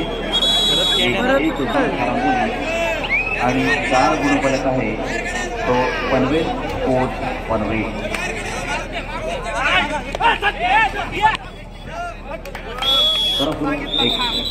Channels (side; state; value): both; identical; correlation 1.00